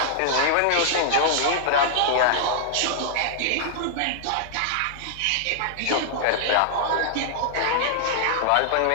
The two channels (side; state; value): both; different; correlation -0.01